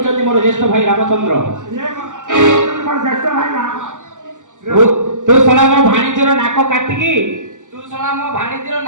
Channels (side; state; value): left; late; 0.87 ms